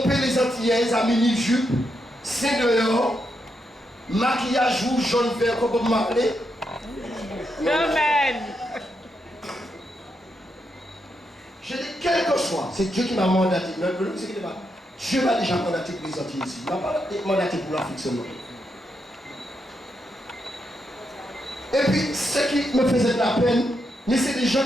les Antillaises à mini-jupe, c'est dehors, maquillage rouge, jaune, vert, comme Bob Marley. Amen. Je dis, quel que soit, c'est Dieu qui m'a mandaté. Dieu m'a déjà mandaté pour les Antilles ici. Il m'a pas mandaté pour l'Afrique seulement. Et puis, ce qui me faisait de la peine, mais c'est des gens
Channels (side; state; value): both; normal; correlation 0.82